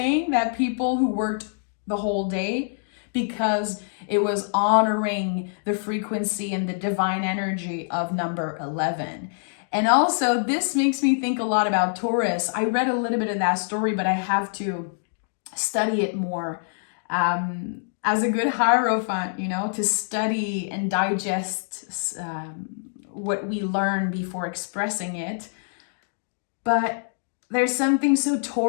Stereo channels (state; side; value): silent; right; digital silence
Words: that people who worked the whole day, because it was honoring the frequency and the divine energy of number 11. And also, this makes me think a lot about Taurus. I read a little bit of that story, but I have to study it more. As a good Hierophant, to study and digest what we learn before expressing it. But there's something so